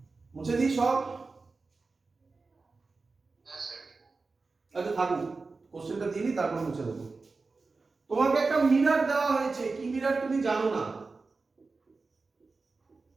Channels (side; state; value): left; quieter; 4.0 dB